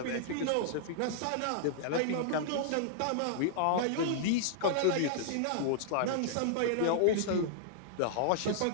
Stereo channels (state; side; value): different; both; correlation -0.01